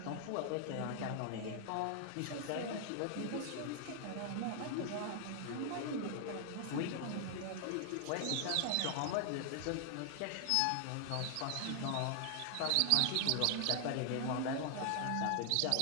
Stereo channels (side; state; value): both; different; correlation 0.00